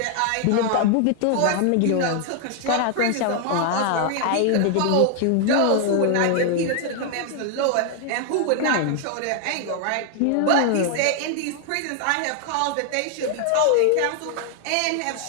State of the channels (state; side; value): different; both; correlation 0.00